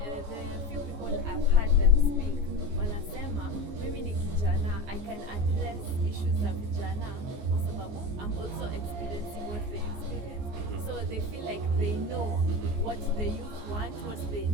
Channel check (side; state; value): left; late; 14 ms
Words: few people I've heard them speak wanasema mimi ni kijana, I can address issues za vijana kwa sababu I'm also experiencing what they experience. So they feel like they know what the youth want, what they